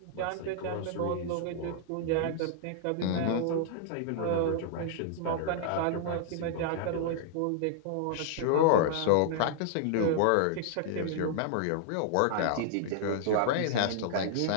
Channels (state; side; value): different; both; correlation -0.01